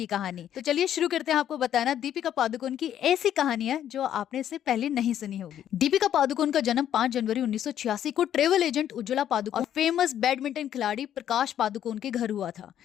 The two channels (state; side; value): quieter; right; 10.5 dB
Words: कहानी। तो चलिए शुरू करते हैं आपको बताना दीपिका पादुकोण की ऐसी कहानियां जो आपने इससे पहले नहीं सुनी होगी। दीपिका पादुकोण का जन्म 5 जनवरी 1986 को ट्रेवल एजेंट उज्ज्वला पादुकोण और फेमस बैडमिंटन खिलाड़ी प्रकाश पादुकोण के घर हुआ था।